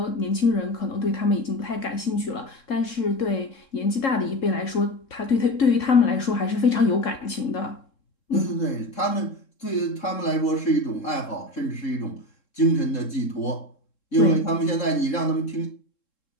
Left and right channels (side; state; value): right; late; 3.7 ms